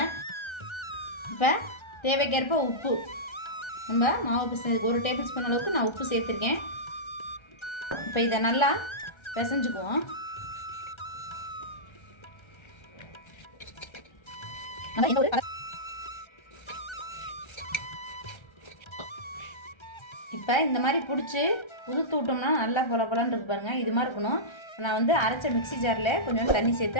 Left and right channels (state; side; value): late; right; 1.3 ms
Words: இப்போ தேவைக்கேற்ப உப்பு. நம்ம மாவு பிசைஞ்சதுக்கு 1 டேபிள் ஸ்பூன் அளவுக்கு நான் உப்பு சேர்த்துருக்கேன். இப்போ இதை நல்லா பிசைஞ்சுக்குவோம். இப்போ இந்த மாதிரி பிடிச்சி உதுத்து விட்டோம்னா நல்லா பொல பொலன்னு இருக்கு பாருங்கள். இது மாதிரி இருக்கணும். நான் வந்து அரைச்ச மிக்ஸி ஜாரில் கொஞ்சம் தண்ணி சேர்த்து